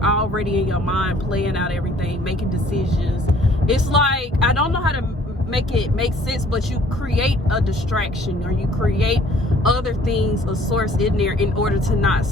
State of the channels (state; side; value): normal; both; correlation 0.57